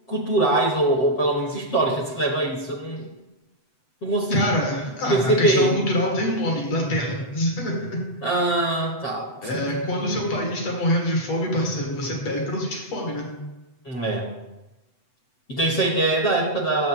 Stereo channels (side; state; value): right; late; 7.9 ms